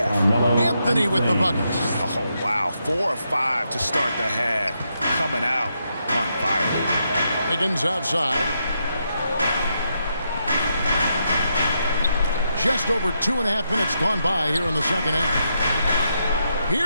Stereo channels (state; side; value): inverted; both; correlation -0.81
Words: Anthony with the bucket. Oh, wow. 4 of 5 to start the half. Coming out on fire. Wiggins outside. Just over 2.5 minutes gone by here in the second half.